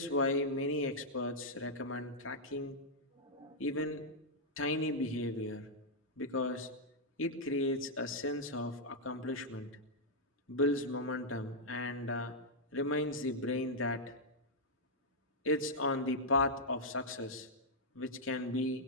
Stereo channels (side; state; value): both; normal; correlation -0.06